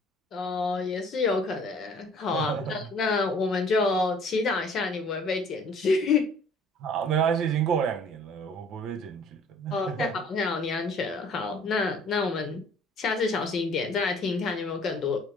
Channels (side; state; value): both; normal; correlation 0.53